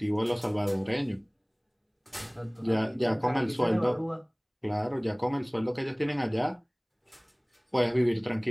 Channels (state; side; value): identical; both; correlation 1.00